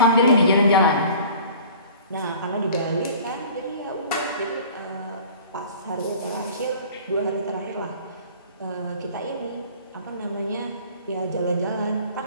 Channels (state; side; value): inverted; both; correlation -0.46